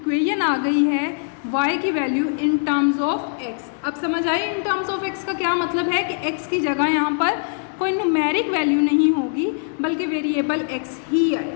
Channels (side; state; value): right; silent; 64 dB below the other